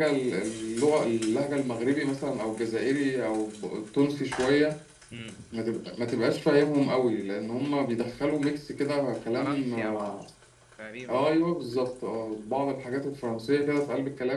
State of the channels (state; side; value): identical; both; correlation 1.00